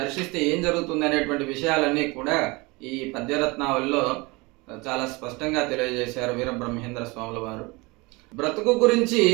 ఏం జరుగుతుంది అనేటువంటి విషయాలన్నీ కూడా ఈ పద్యరత్నావళిలో చాలా స్పష్టంగా తెలియజేశారు వీరబ్రహ్మేంద్ర స్వాముల వారు. బ్రతుకు గురించి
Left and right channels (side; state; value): left; quieter; 25.1 dB